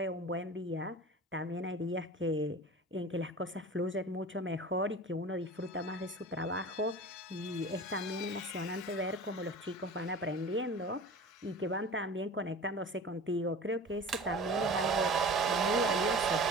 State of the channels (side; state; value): both; normal; correlation 0.37